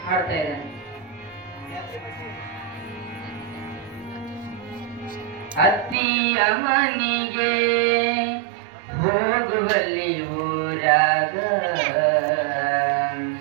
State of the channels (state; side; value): drops out; left; at 6.0 s